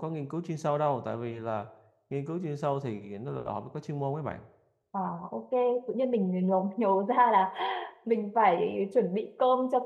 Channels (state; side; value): identical; both; correlation 1.00